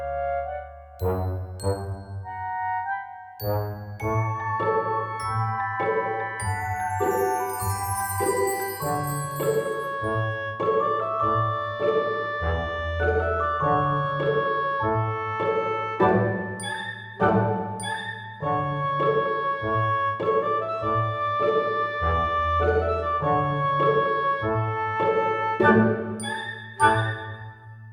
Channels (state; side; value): identical; both; correlation 1.00